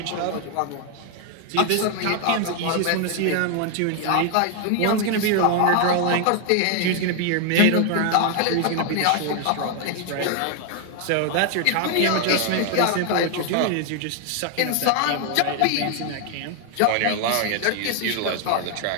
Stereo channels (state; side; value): different; both; correlation 0.00